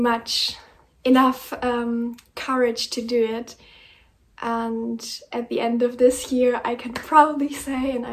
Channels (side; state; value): both; identical; correlation 1.00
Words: enough courage to do it. And at the end of this year, I can proudly say, and